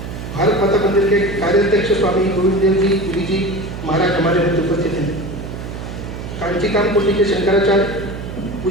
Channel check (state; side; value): noise; right; hum, 9 dB below the sound